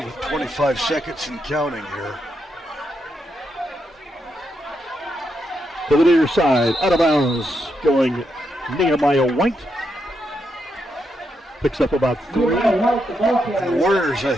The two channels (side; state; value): both; normal; correlation 0.82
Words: 25 seconds and counting here. To the near side, out of bounds, going Nehemiah White. Picks up about 3. The Warriors, I